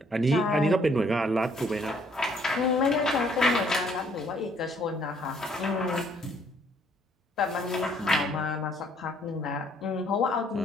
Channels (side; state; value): both; normal; correlation 0.65